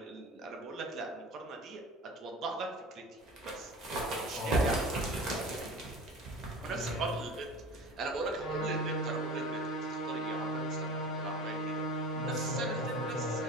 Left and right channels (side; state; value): both; normal; correlation 0.36